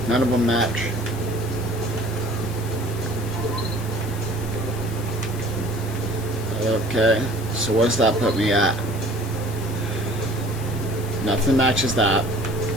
none of them match. Okay, so what's that put me at? Nothing matches that.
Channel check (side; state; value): left; noise; hiss, 16 dB below the sound